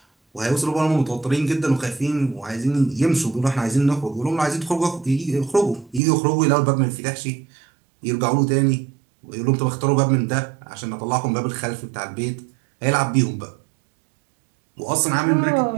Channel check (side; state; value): left; drops out; at 6.0 s